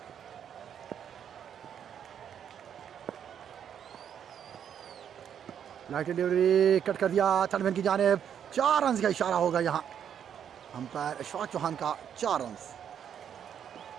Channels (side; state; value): left; quieter; 8.7 dB